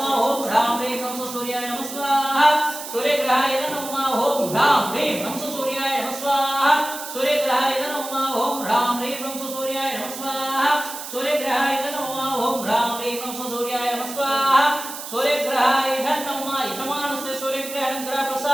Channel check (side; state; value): right; noise; hiss, 9 dB below the sound